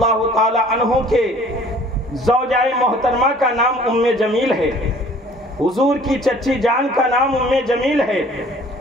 تعالی عنہ کے زوجہ محترمہ کا نام ام جمیل ہے، حضور کی چچی جان کا نام ام جمیل ہے۔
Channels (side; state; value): both; normal; correlation 0.53